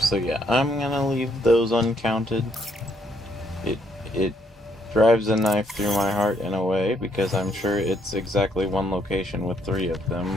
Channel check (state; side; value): normal; both; correlation 0.71